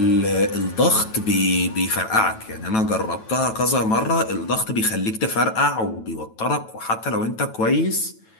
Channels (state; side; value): late; right; 9.1 ms